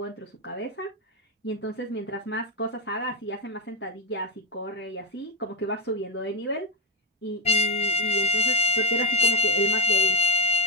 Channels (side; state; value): both; normal; correlation 0.08